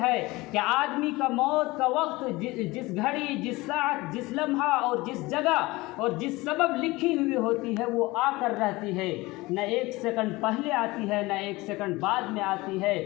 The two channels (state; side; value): quieter; right; 21.3 dB